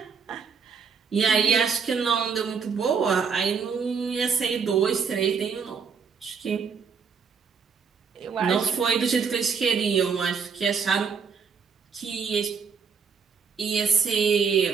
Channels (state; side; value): quieter; left; 6.0 dB